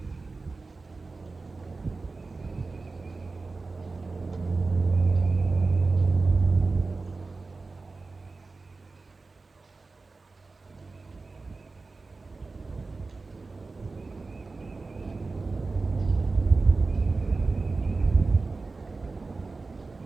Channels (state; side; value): quieter; left; 3.8 dB